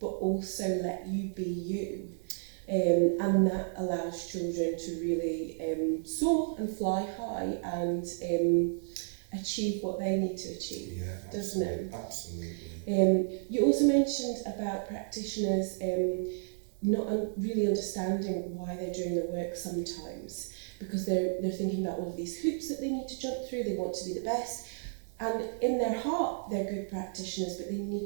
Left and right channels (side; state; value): left; silent; digital silence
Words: but also let you be you. And that allows children to really soar and fly high and achieve what they need to achieve. Yeah, absolutely. Doesn't it? Absolutely. You also mentioned about practitioners not really understanding why they're doing the work sometimes, because they're thinking about all of these hoops that they need to jump through. They want to be the best, and in their heart they're good practitioners, but they